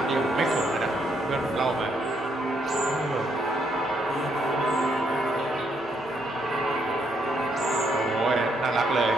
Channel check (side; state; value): both; normal; correlation 0.74